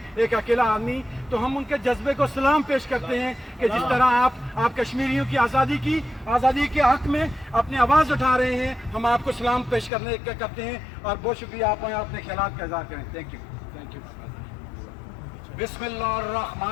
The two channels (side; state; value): right; drops out; at 9.9 s